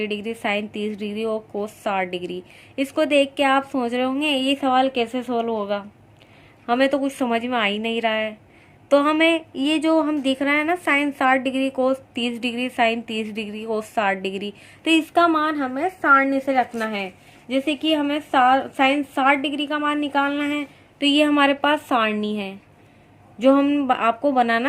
डिग्री, साइन 30 डिग्री और कोस 60 डिग्री। इसको देख के आप सोच रहे होंगे ये सवाल कैसे सोल्व होगा, हमें तो कुछ समझ में आ ही नहीं रहा है। तो हमें ये जो हम दिख रहा है ना साइन 60 डिग्री, कोस 30 डिग्री, साइन 30 डिग्री, कोस 60 डिग्री, तो इसका मान हमें सारणी से रखना है। जैसे कि हमें साइन 60 डिग्री का मान निकालना है, तो ये हमारे पास सारणी है जो हम आपको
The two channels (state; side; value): identical; both; correlation 1.00